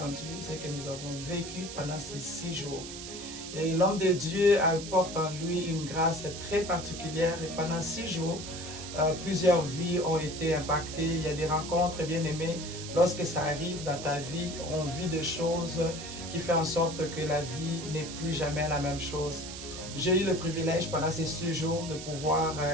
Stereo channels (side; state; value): right; noise; hiss, 10 dB below the sound